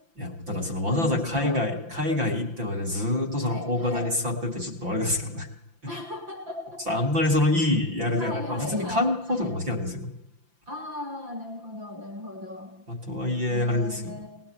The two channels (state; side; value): late; left; 5.9 ms